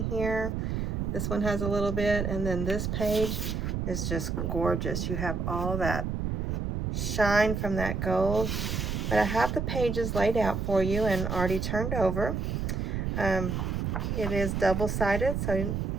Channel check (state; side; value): noise; right; rumble, 1 dB below the sound